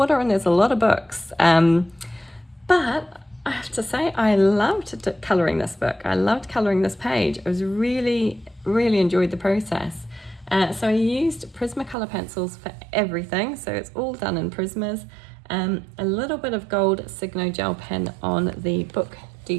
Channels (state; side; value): drops out; left; at 12.0 s